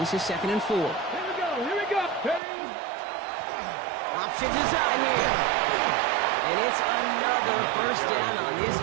is 2nd and 4. Here we go. Ready? Option design here. And it's another first down on this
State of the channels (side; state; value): left; drops out; at 2.4 s